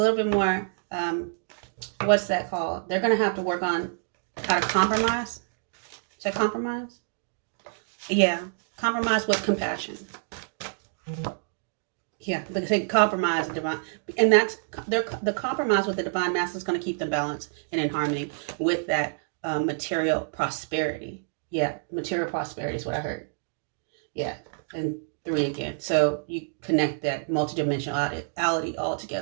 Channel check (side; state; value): left; silent; digital silence